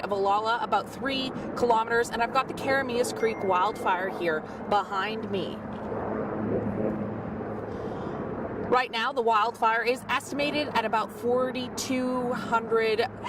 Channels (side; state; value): both; identical; correlation 1.00